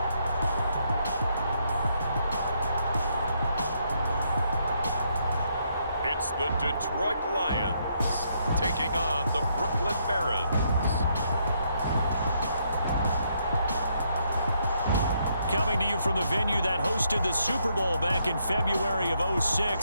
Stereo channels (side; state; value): both; inverted; correlation -0.74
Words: It's the Detroit Lions taking on the Brooklyn Barons. Coming to you from the venue that hosted the Super Bowl back in February of